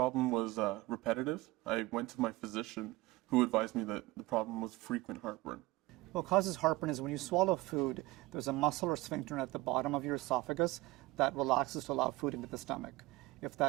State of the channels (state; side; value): quieter; left; 20.0 dB